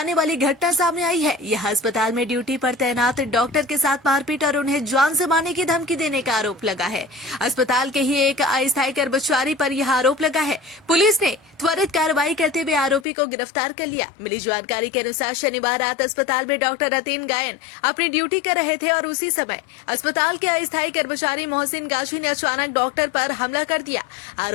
वाली घटना सामने आई है। यह अस्पताल में ड्यूटी पर तैनात डॉक्टर के साथ मारपीट और उन्हें जान से मारने की धमकी देने का आरोप लगा है। अस्पताल के ही एक अस्थायी कर्मचारी पर यह आरोप लगा है। पुलिस ने त्वरित कार्रवाई करते हुए आरोपी को गिरफ्तार कर लिया। मिली जानकारी के अनुसार शनिवार रात अस्पताल में डॉक्टर रतीन गायन अपनी ड्यूटी कर रहे थे और उसी समय अस्पताल के अस्थायी कर्मचारी मोहसिन गाजी ने अचानक डॉक्टर पर हमला कर दिया।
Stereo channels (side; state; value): right; drops out; at 13.1 s